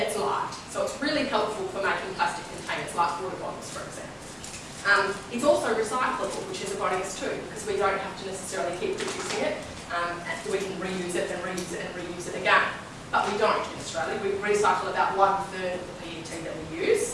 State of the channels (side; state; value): both; identical; correlation 1.00